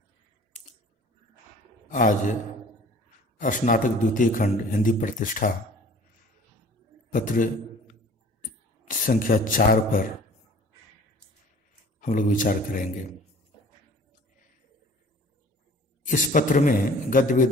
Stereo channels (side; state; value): both; normal; correlation 0.48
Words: आज स्नातक द्वितीय खंड हिंदी प्रतिष्ठा पत्र संख्या 4 पर हम लोग विचार करेंगे। इस पत्र में गद्य